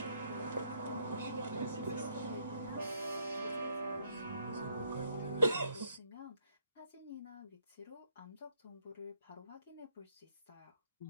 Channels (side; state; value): both; inverted; correlation -0.73